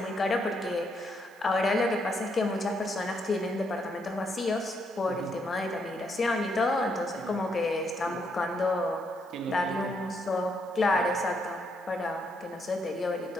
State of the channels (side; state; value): right; noise; hiss, 29 dB below the sound